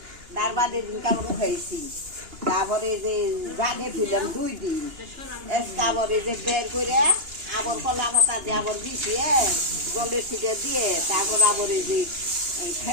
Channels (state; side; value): late; left; 2.8 ms